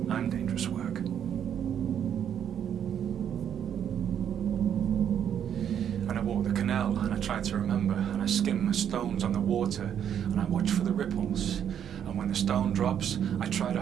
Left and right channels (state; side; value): quieter; left; 9.1 dB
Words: I'm dangerous work. And I walk the canal and I try to remember and I skim the stones on the water and I watch for the ripples. And when the stone drops, I try to